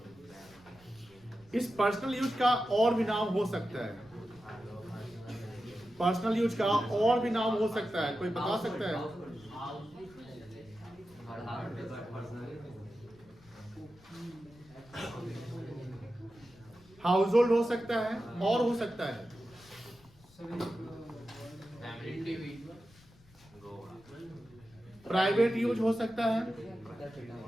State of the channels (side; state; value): left; noise; rumble, 26 dB below the sound